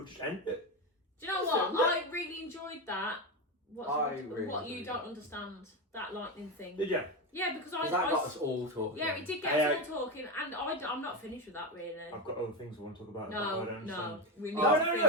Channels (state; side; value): normal; both; correlation 0.15